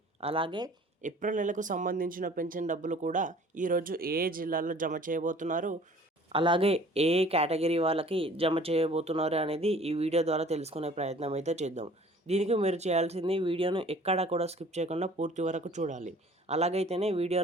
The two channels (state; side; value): normal; both; correlation 0.50